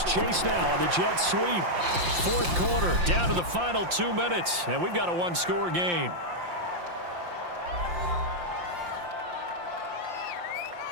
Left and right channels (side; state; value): left; late; 5.7 ms